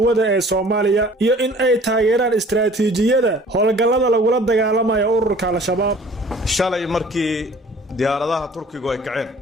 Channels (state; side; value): normal; both; correlation 0.50